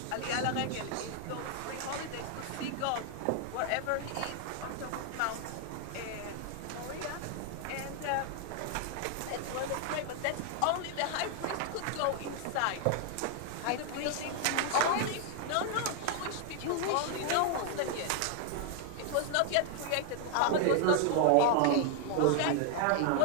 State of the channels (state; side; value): different; both; correlation 0.00